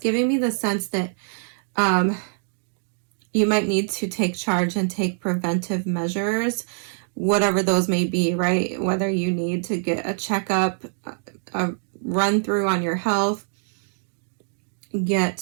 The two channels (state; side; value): silent; left; digital silence